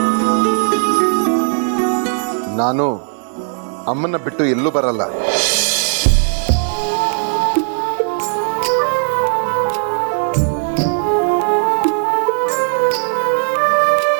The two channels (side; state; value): left; silent; 63 dB below the other